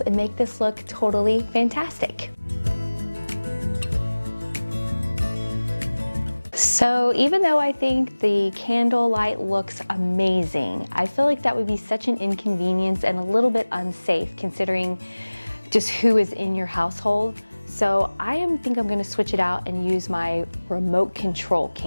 and make this look totally fantastic. So even though I think the candlelight looks amazing, I feel like that would be such an inconvenience and a little bit unsafe considering just who is in your household. So I think I'm gonna switch it out and use my remote control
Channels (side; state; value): both; inverted; correlation -1.00